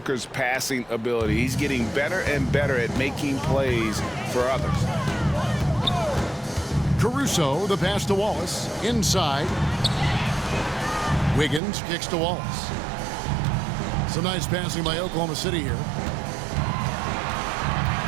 passing ability. He's getting better and better at making plays for others. Caruso, the pass to Wallace. Inside. Wiggins kicks to Wallace. Some nice passing by Oklahoma City here.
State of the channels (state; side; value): drops out; left; at 11.6 s